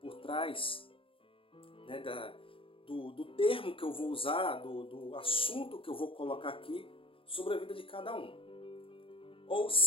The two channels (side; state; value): right; late; 0.26 ms